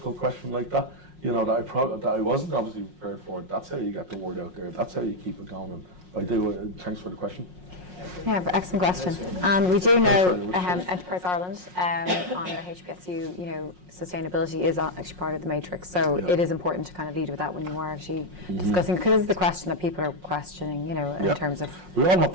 question like that, you know, that I wasn't obviously prepared for. That's how you get the word out there. That's how you keep it going. I do. Thanks for the question. Yeah, excellent question. And we do know Enterprise Ireland on the HPSU, you know, sustainability is actually part of the matrix. So it is important to kind of lead with that when you are actually discussing, because it's the question that people are questioning, you know, in terms of. We all have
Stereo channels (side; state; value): left; late; 5.5 ms